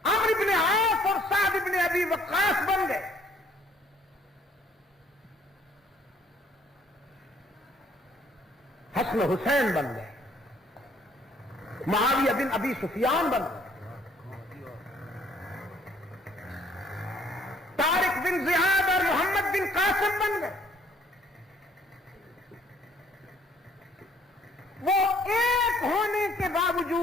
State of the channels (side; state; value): both; normal; correlation 0.62